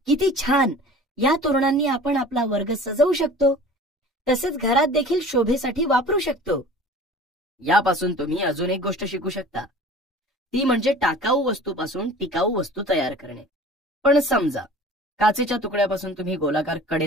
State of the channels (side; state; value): both; normal; correlation 0.43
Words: किती छान! या तोरणांनी आपण आपला वर्ग सजवू शकतो. तसेच घरात देखील शोभेसाठी वापरू शकतो. यापासून तुम्ही अजून एक गोष्ट शिकू शकता, ती म्हणजे टाकाऊ वस्तूपासून टिकाऊ वस्तू तयार करणे. पण समजा काचेच्या तुकड्यापासून तुम्ही गोलाकार